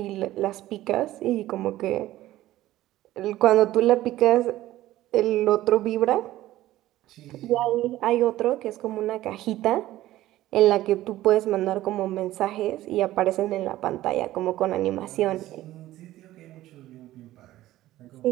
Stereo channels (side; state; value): left; quieter; 15.2 dB